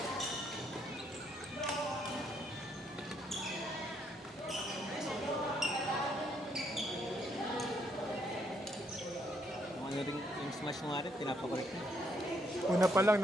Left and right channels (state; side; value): normal; both; correlation 0.73